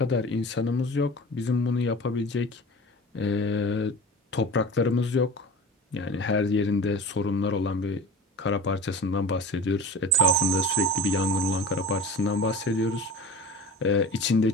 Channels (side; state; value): both; normal; correlation 0.36